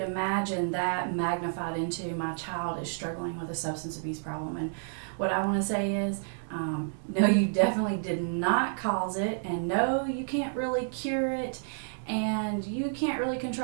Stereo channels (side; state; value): left; silent; digital silence